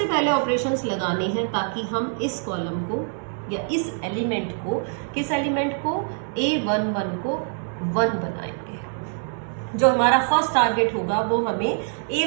पहले ऑपरेशंस लगाने हैं ताकि हम इस कॉलम को या इस एलिमेंट को, किस एलिमेंट को, A11 को 1 बनाएंगे। जो हमारा फर्स्ट टारगेट होगा वो हमें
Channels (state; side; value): silent; left; 58 dB below the other